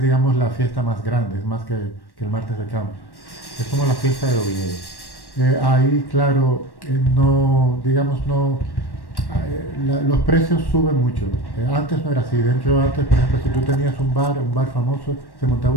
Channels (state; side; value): late; right; 1.1 ms